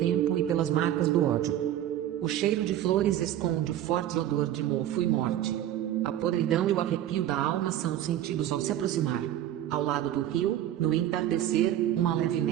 e pelas marcas do ódio. O cheiro de flores esconde o forte odor de mofo e morte. A podridão e o arrepio da alma são sentidos ao se aproximar. Ao lado do rio, no entardecer, uma leve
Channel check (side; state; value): left; quieter; 12.1 dB